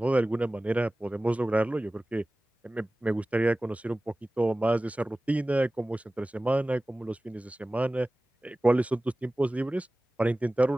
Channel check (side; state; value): both; normal; correlation 0.97